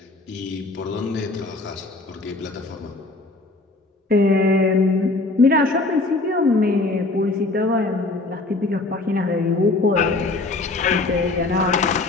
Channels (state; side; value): quieter; right; 3.1 dB